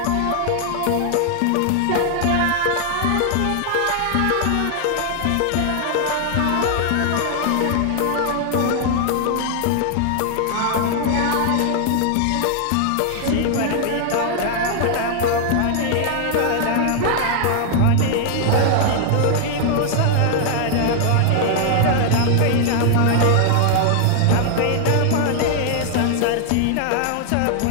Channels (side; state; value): both; different; correlation 0.00